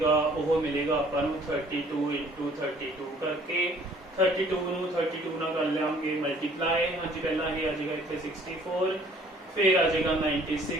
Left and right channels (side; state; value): both; normal; correlation 0.56